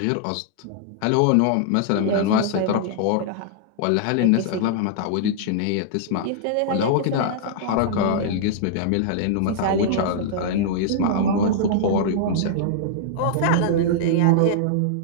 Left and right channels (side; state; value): both; different; correlation -0.01